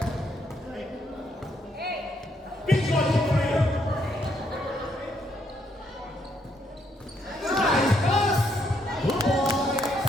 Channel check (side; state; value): both; normal; correlation 0.74